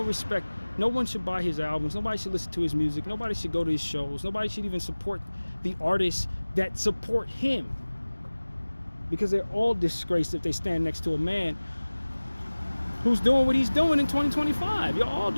respect. No one should buy his albums. Nobody should listen to his music. Nobody should go to his shows. Nobody should even support the artists that support him, because they're all disgraced if they stand next to a man who's doing what he's doing in 2025. You're all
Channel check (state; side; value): inverted; both; correlation -1.00